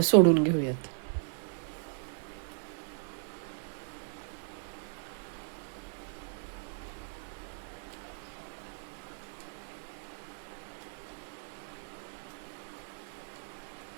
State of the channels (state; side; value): silent; left; digital silence